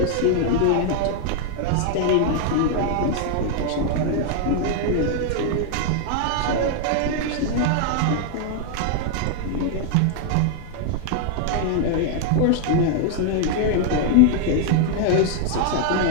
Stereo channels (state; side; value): different; both; correlation 0.00